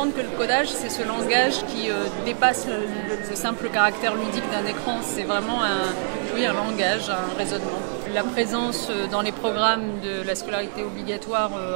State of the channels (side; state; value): left; silent; digital silence